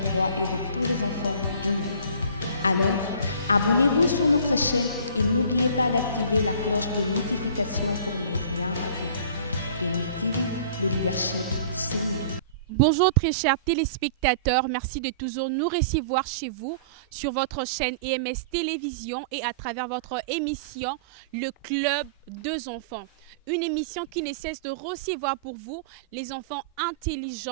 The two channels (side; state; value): both; inverted; correlation -0.44